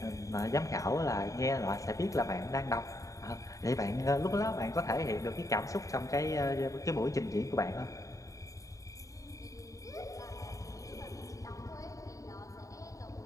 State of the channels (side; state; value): right; late; 0.16 ms